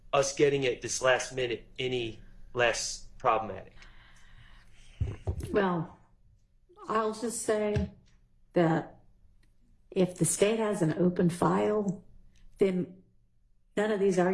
us getting it this last minute any less problematic. Well, I'll just say that if the state has an open file, then none of these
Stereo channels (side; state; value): both; identical; correlation 1.00